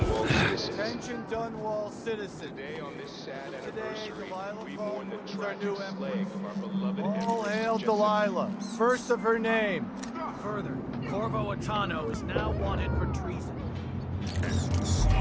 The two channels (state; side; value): identical; both; correlation 1.00